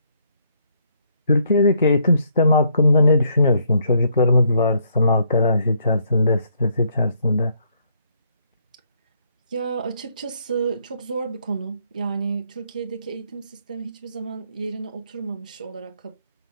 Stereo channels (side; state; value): both; inverted; correlation -0.71